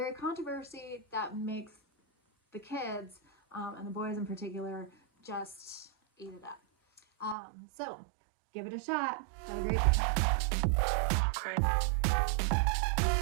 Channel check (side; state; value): left; drops out; at 7.4 s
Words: controversy that makes the kids, and the boys in particular, just eat it up. So give it a shot. Have a great